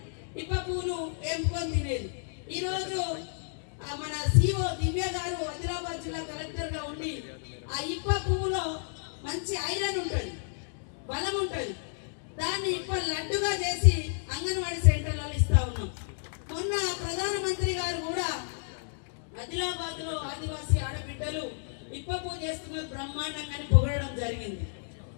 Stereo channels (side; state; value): right; silent; digital silence